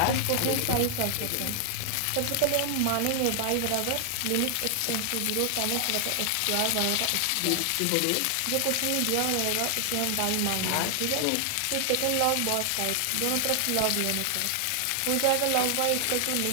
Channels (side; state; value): both; different; correlation 0.00